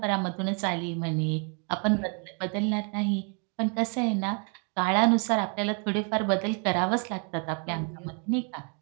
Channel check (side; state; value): left; quieter; 37.5 dB